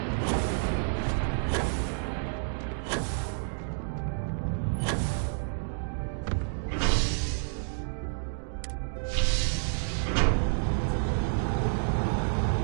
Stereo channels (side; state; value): left; silent; digital silence